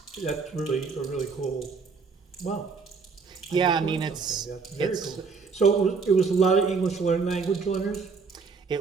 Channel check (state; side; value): quieter; left; 5.0 dB